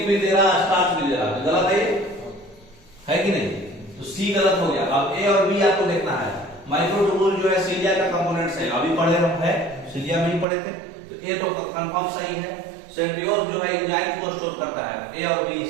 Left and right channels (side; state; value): left; drops out; at 10.5 s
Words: भी दे रहा, स्टार्च भी दे रहा, तो गलत है कि नहीं? तो सी गलत हो गया। अब ए और बी आपको देखना है। माइक्रोट्यूबुल जो है सीलिया का कंपोनेंट्स है, अभी पढ़े हम है, सीलिया में ही पढ़े थे, तो ए तो कंफर्म सही है। सेंट्रियोल्स जो है एंजाइम को स्टोर करता है, ए और बी